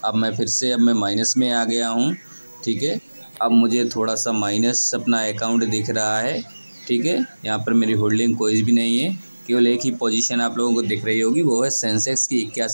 अब मैं माइनस में आ गया हूँ, ठीक है। अब मुझे थोड़ा सा माइनस अपना अकाउंट दिख रहा है, ठीक है। यहाँ पर मेरी होल्डिंग कोई भी नहीं है, केवल एक ही पोजीशन आप लोगों को दिख रही होगी, वो है सेंसेक्स की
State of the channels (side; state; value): both; inverted; correlation -1.00